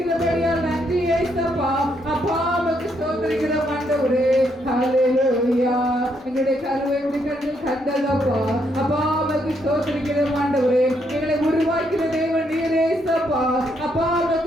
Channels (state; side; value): normal; both; correlation 0.75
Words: நன்றி இயேசப்பா. அப்பா உமக்கு ஸ்தோத்திரிக்கிறோம் ஆண்டவரே. ஹalleluya. எங்களுடைய கருவை முடிக்கணும் கண்டதப்பா. அப்பா உமக்கு ஸ்தோத்திரிக்கிறோம் ஆண்டவரே. எங்களை உருவாக்கிற தேவன் நீர் இயேசப்பா. அப்பா